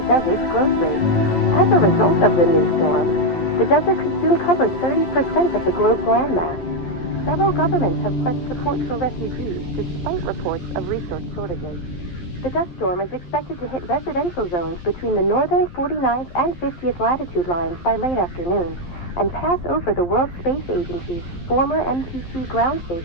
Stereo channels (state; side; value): late; right; 11 ms